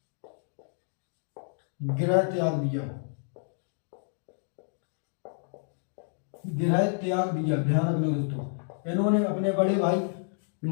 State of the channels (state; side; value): silent; right; digital silence